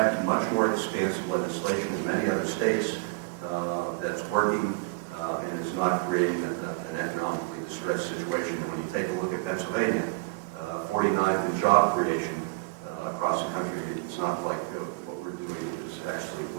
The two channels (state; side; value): quieter; left; 26.7 dB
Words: much more expansive legislation in many other states that's working and is not creating an economically distressed situation. And when you take a look at Pennsylvania, 49th in job creation across the country, it's not like what we're doing is actually